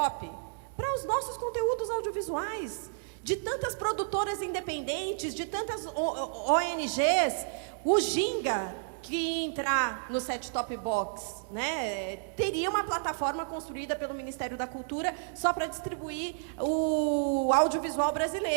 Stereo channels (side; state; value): left; silent; 57 dB below the other